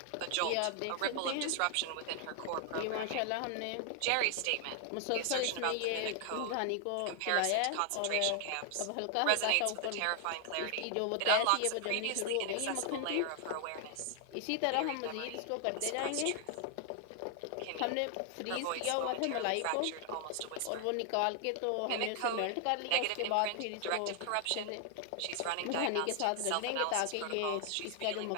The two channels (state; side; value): different; both; correlation 0.00